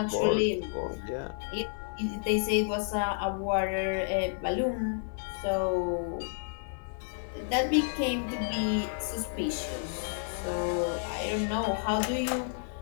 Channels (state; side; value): silent; right; 57 dB below the other